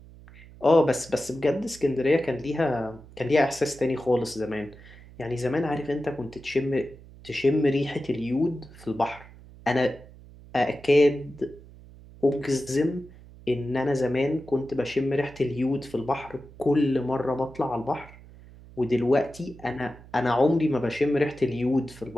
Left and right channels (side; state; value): right; noise; hum, 20 dB below the sound